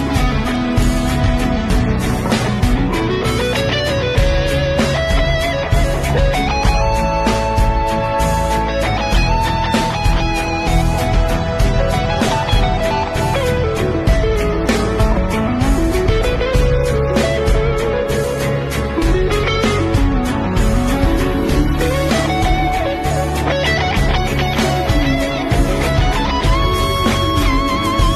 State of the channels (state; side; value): identical; both; correlation 1.00